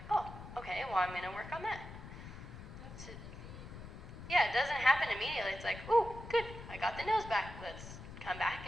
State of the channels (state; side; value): noise; left; rumble, 12 dB below the sound